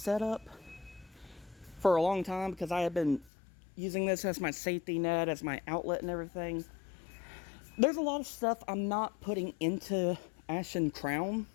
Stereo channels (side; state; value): right; drops out; at 3.3 s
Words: up for a long time, because I had been using this as my safety net, as my outlet and everything, there's a lot of stuff I'm not putting into Ashen Crown.